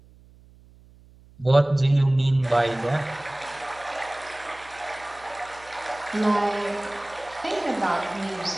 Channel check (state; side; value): noise; right; hum, 25 dB below the sound